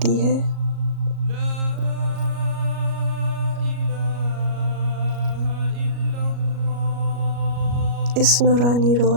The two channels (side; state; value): left; late; 37 ms